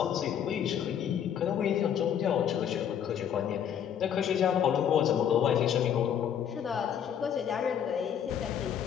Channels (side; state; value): right; quieter; 8.9 dB